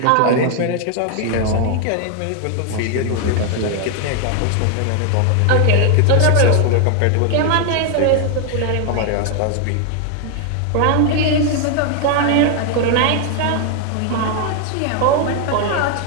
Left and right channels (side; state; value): both; different; correlation 0.00